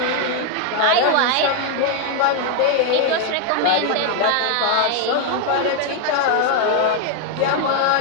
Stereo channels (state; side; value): different; both; correlation 0.00